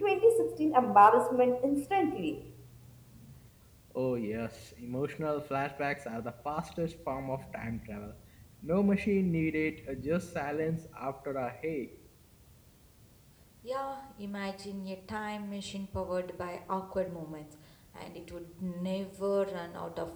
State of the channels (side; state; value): both; identical; correlation 1.00